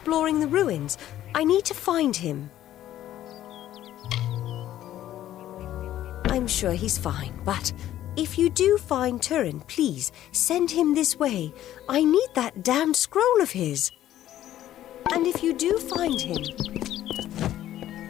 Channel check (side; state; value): right; quieter; 12.7 dB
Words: the ruins. I need to find him. I'm sure he's fine, but if you do find Turin, please send him this way. I need that damned scroll of his. And if you do find him...